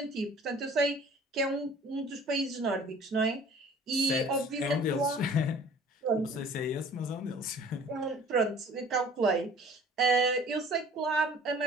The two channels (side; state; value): both; normal; correlation 0.50